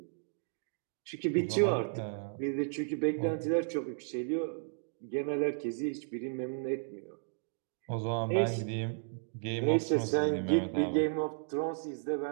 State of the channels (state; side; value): silent; left; digital silence